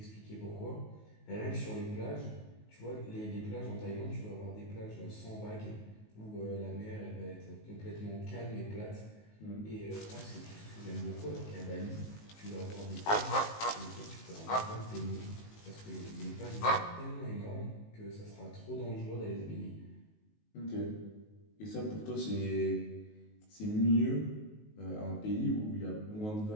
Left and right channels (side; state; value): right; late; 19 ms